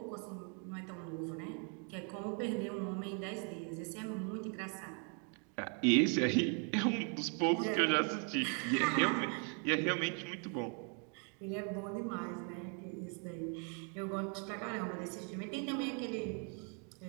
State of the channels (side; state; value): left; quieter; 39.5 dB